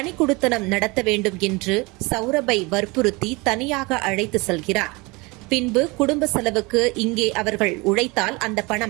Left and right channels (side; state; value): left; quieter; 25.4 dB